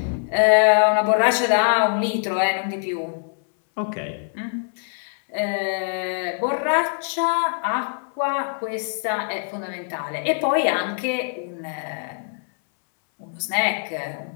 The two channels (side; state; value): right; silent; 61 dB below the other